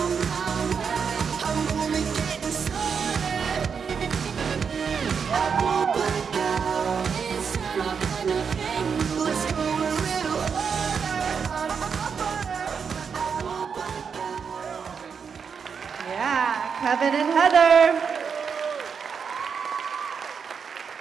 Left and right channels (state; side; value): quieter; left; 6.4 dB